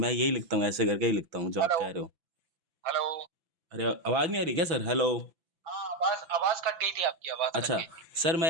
यही लिखता हूँ, ऐसे करके ही लिखता हूँ जो आप हेलो कह रहे हो। हेलो। अरे आवाज़ नहीं आ रही क्या सर? हेलो। हाँ, आवाज आवाज कट गई थी, आपकी आवाज कट अच्छा गई थी। सर, मैं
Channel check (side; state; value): left; late; 5.9 ms